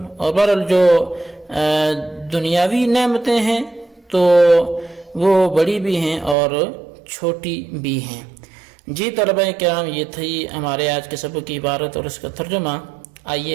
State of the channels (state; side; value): drops out; left; at 6.4 s